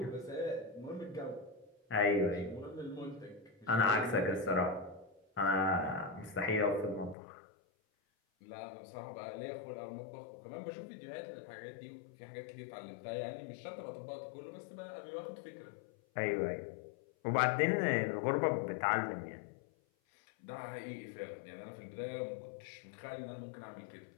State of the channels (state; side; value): drops out; right; at 7.2 s